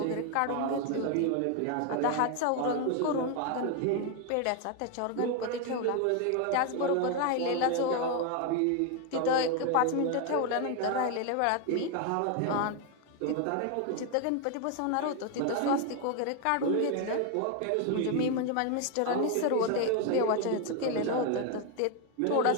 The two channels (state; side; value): different; both; correlation 0.01